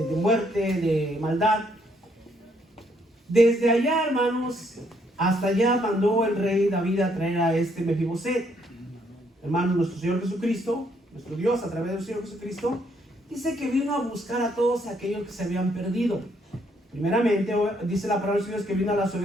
muerte, de maldad. Desde allá, hermanos, hasta allá mandó el rey David a traer a este Mefibosé. Hermanos, nuestro Señor Jesucristo, nuestro Dios a través del Señor Jesucristo, dice que vino a buscar a todos aquellos que se habían perdido. Primeramente, dice la palabra de Dios que vino a las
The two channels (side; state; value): both; normal; correlation 0.71